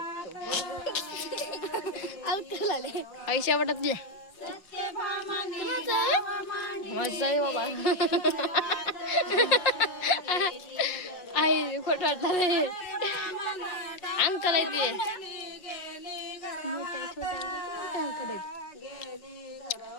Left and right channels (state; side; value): late; right; 5.6 ms